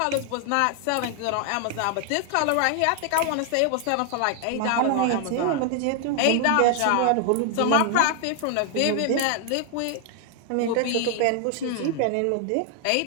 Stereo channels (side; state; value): both; different; correlation 0.00